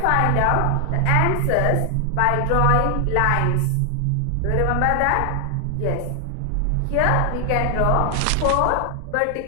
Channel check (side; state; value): both; different; correlation 0.00